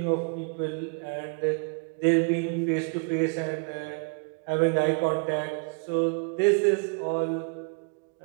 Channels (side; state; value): left; quieter; 38.2 dB